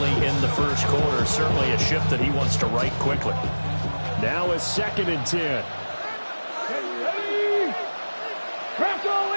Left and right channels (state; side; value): inverted; both; correlation -1.00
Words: in the 1st quarter. Certainly a ship that he wants to right quickly. Now it's 2nd and 10. Ready. Press all